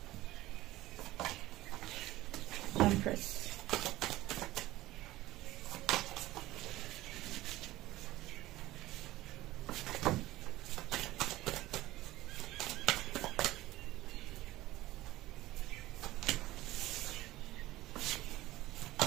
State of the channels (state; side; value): quieter; left; 16.8 dB